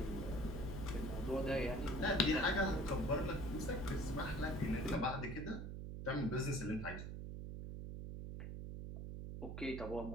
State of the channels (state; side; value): noise; right; hum, 6 dB below the sound